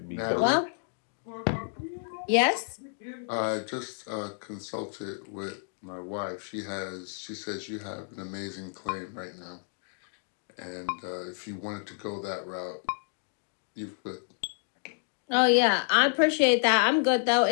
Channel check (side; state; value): right; silent; digital silence